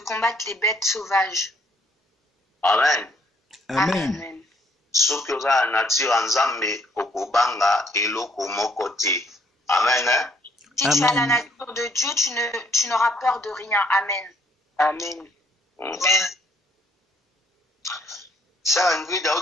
les bêtes sauvages. Amen. Amen. Soki oza na nature ya Nzambe okobanga eloko moko te. Amen. Si tu as la nature de Dieu, tu n'auras peur de rien. Amen. Amen. Sœur Ingrid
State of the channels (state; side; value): normal; both; correlation 0.66